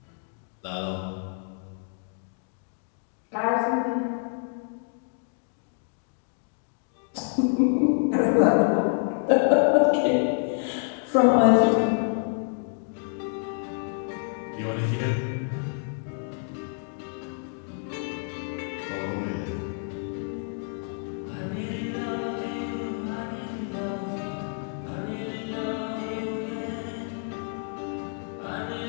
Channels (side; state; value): right; silent; 59 dB below the other